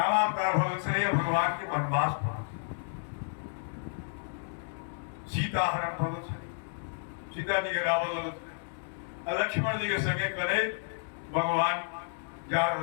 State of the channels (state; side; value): silent; right; digital silence